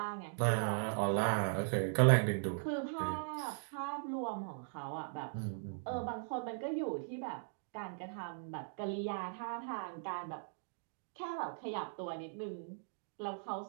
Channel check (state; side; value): silent; left; digital silence